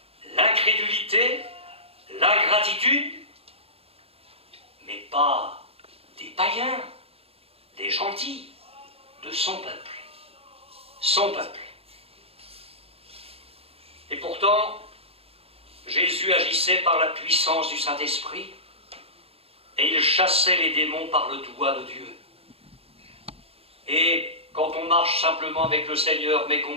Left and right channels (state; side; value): late; left; 0.28 ms